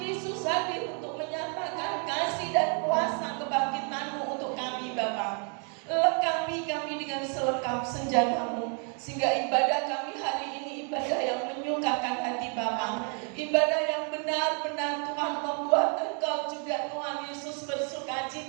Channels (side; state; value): left; quieter; 39.9 dB